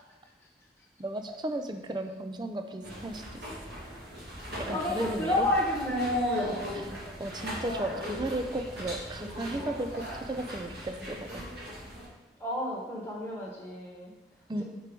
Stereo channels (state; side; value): normal; both; correlation 0.42